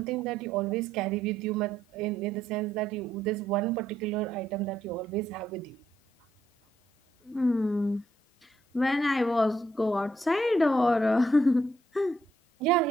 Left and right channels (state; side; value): normal; both; correlation 0.73